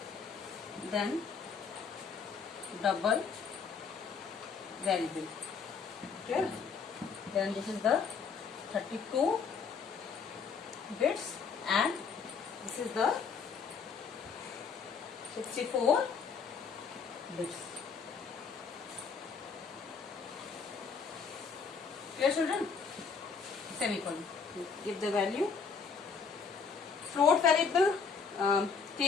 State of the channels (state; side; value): quieter; right; 5.6 dB